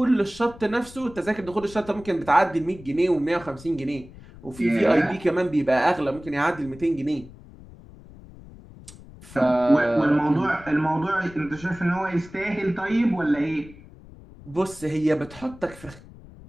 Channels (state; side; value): noise; left; rumble, 19 dB below the sound